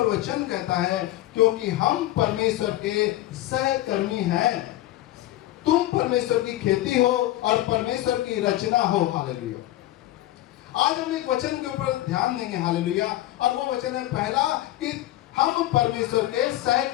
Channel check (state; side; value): quieter; right; 15.4 dB